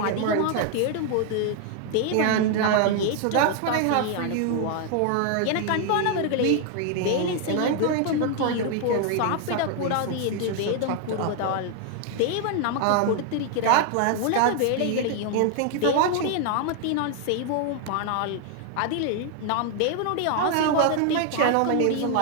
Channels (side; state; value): both; different; correlation 0.00